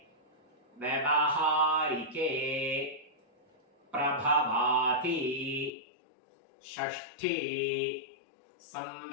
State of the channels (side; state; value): right; drops out; at 5.7 s